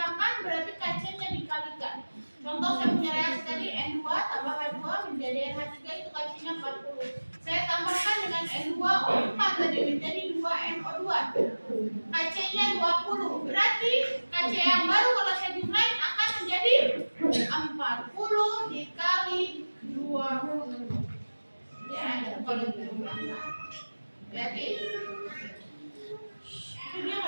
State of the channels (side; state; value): both; inverted; correlation -1.00